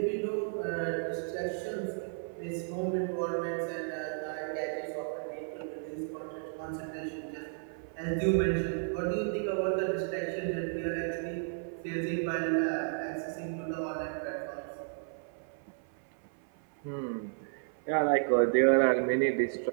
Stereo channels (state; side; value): silent; left; 56 dB below the other